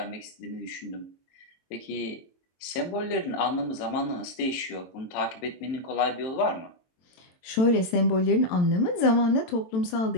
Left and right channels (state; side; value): late; right; 22 ms